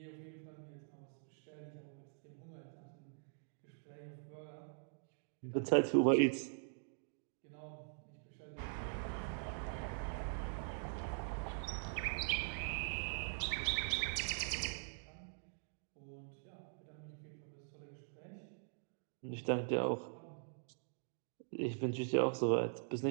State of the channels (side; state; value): left; silent; digital silence